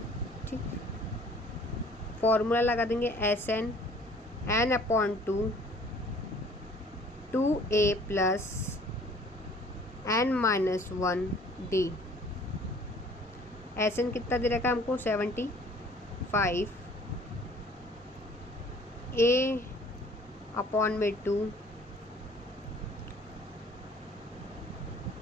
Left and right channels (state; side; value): normal; both; correlation 0.53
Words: ठीक। फॉर्मूला लगा देंगे S N upon 2a plus n minus 1 D. S N कितना दे रखा है हमको 75, a अपॉन में 2,